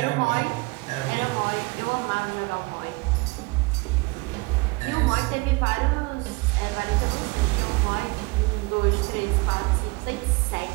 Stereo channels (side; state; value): left; quieter; 25.3 dB